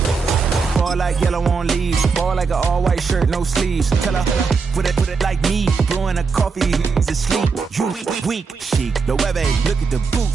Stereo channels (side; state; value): left; quieter; 5.0 dB